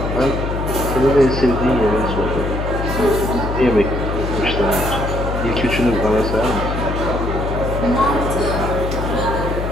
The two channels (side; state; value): left; noise; hum, 3 dB below the sound